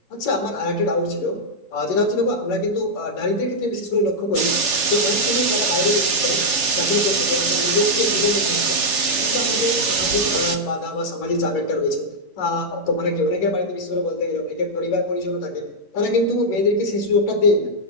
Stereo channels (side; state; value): right; late; 11 ms